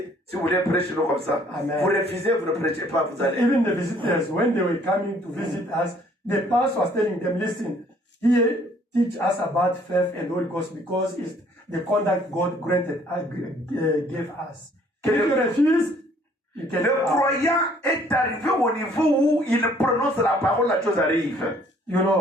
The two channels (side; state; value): both; normal; correlation 0.60